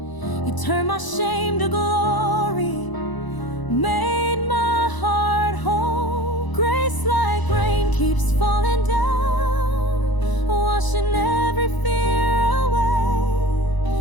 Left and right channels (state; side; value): late; right; 1.0 ms